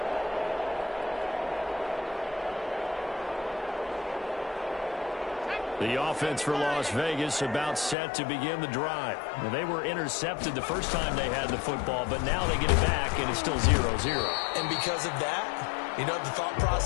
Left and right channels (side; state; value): right; drops out; at 8.0 s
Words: The offense for Las Vegas about set to begin the drive. Now, they were intercepted the first time they had the football, but now they get it back, and it's still 0-0. And because of that, you know what the thought